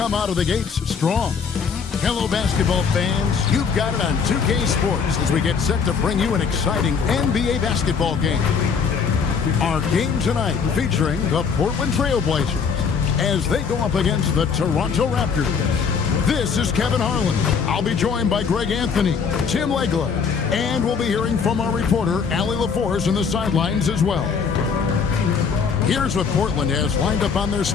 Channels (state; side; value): quieter; right; 6.0 dB